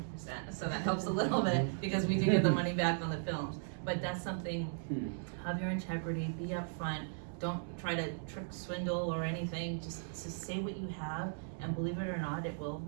So that helps a little bit because we do get the money back on the films. But that's something, have your integrity, be upfront, don't try to trick, swindle, or anything. Just say what you have, and believe it or not, it will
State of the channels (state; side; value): silent; left; digital silence